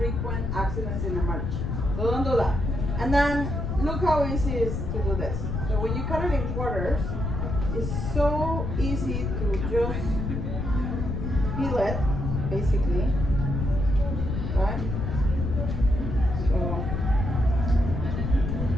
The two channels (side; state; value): left; noise; rumble, 2 dB below the sound